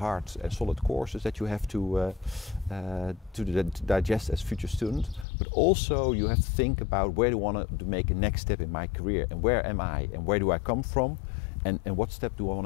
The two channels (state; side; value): drops out; right; at 5.2 s